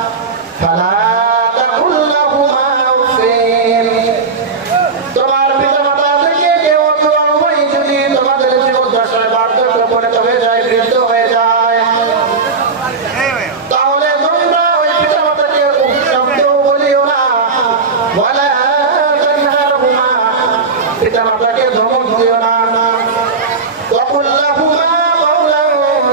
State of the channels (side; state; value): left; quieter; 4.6 dB